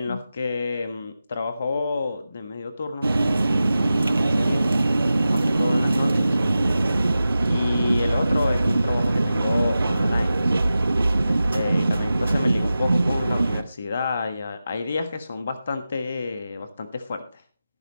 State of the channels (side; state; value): both; inverted; correlation -0.93